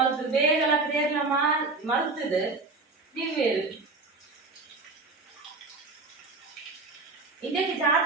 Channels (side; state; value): left; quieter; 3.7 dB